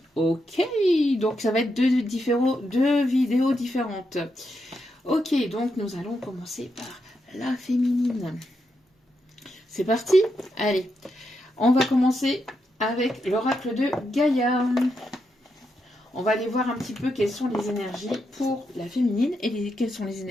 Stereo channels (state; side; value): normal; both; correlation 0.83